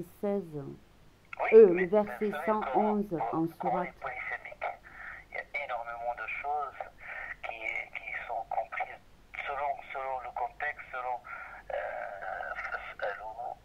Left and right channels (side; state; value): both; identical; correlation 1.00